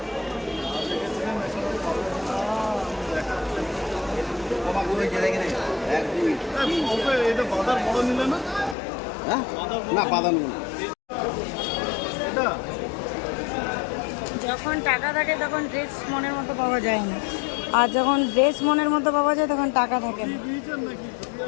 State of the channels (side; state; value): right; drops out; at 8.8 s